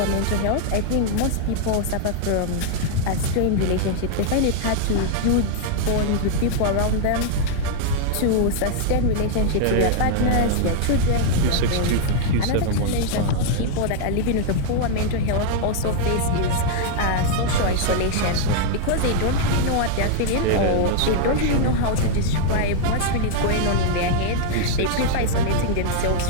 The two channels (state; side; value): different; both; correlation 0.00